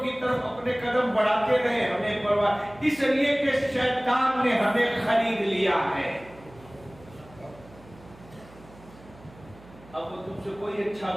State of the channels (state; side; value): noise; right; hum, 22 dB below the sound